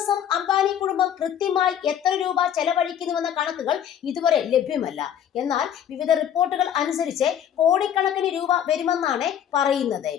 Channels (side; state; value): right; quieter; 9.6 dB